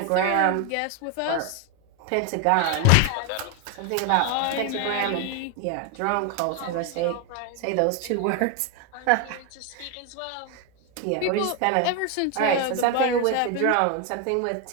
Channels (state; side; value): different; both; correlation 0.01